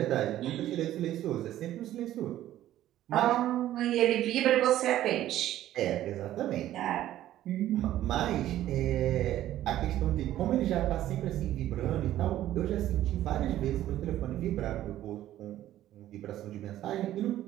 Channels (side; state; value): left; quieter; 13.2 dB